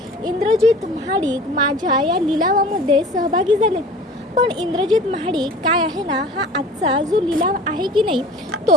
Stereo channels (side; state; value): both; normal; correlation 0.43